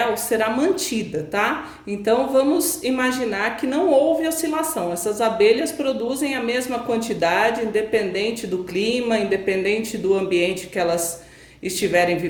será mantida, tá? Então vamos imaginar que não houve oscilação. Essas abelhas produzem a mesma quantidade, independente do clima, independente do ambiente que elas estiverem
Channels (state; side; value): identical; both; correlation 1.00